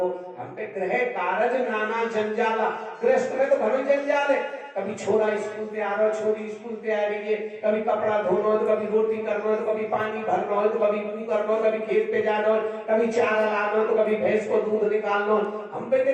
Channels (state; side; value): identical; both; correlation 1.00